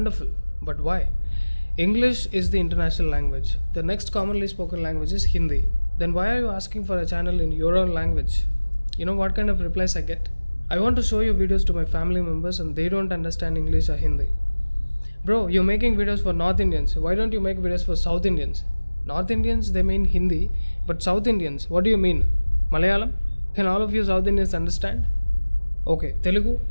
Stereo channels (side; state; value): both; inverted; correlation -1.00